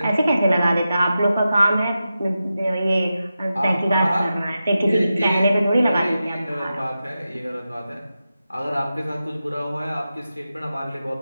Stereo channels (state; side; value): inverted; both; correlation -0.91